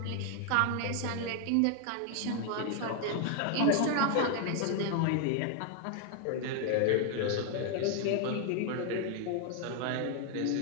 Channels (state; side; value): different; both; correlation 0.00